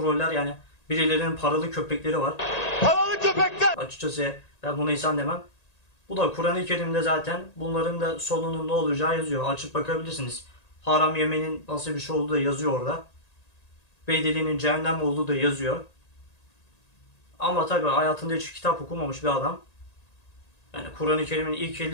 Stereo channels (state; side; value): late; right; 1.8 ms